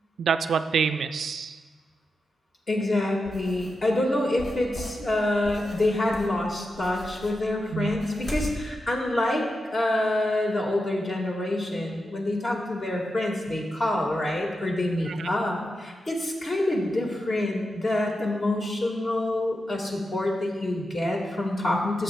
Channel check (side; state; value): both; normal; correlation 0.88